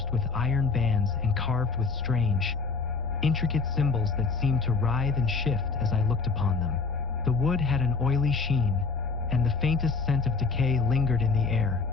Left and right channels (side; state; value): right; quieter; 4.5 dB